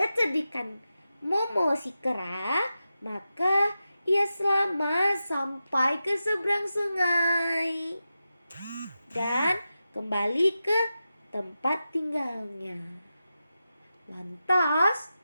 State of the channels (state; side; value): inverted; both; correlation -0.92